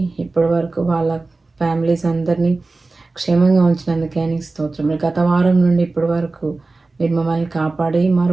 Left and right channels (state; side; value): quieter; left; 3.5 dB